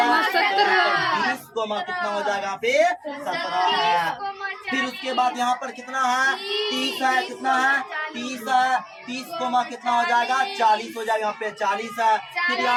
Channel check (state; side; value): identical; both; correlation 1.00